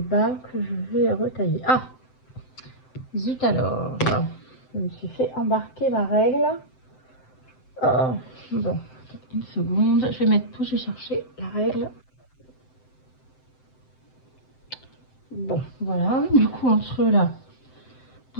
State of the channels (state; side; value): late; right; 7.8 ms